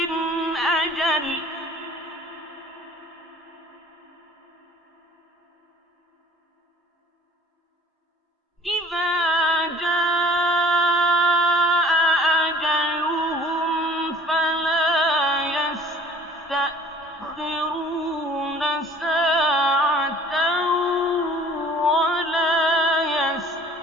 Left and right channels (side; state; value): both; normal; correlation 0.49